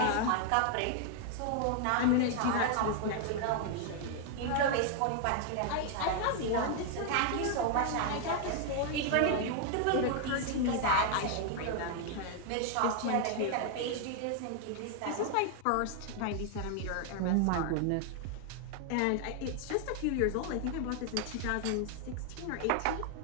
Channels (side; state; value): both; different; correlation 0.00